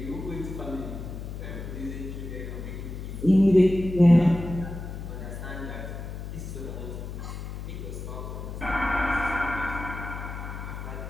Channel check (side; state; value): left; noise; hum, 8 dB below the sound